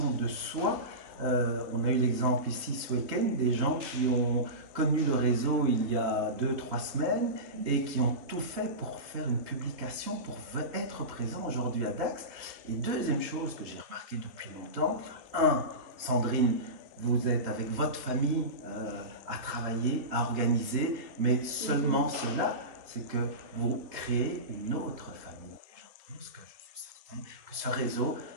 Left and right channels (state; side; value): late; left; 3.3 ms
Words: de soi. On a eu l'exemple ici ce week-end des gens qui ont connu le réseau il y a 2-3 semaines et qui ont tout fait pour faire une publication, pour être présents aujourd'hui à Dax. Et deuxième chose que j'ai remarqué depuis longtemps, Sandrine, vous êtes avec votre famille à travailler, à organiser, mais seulement cela, c'est que vous créez une autre famille. Et je pense que je suis certain que ce réseau